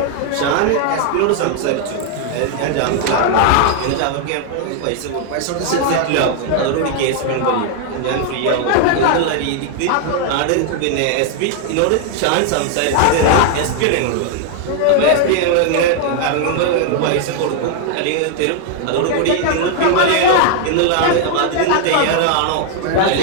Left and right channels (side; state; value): both; different; correlation 0.00